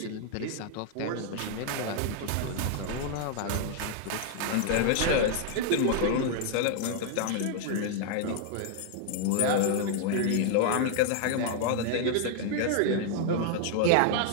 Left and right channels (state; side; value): different; both; correlation 0.00